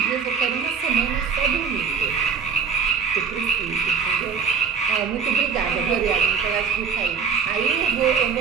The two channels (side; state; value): left; quieter; 6.0 dB